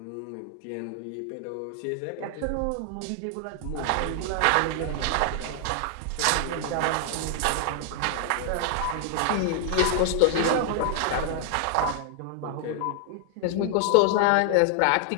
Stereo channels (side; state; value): both; different; correlation 0.00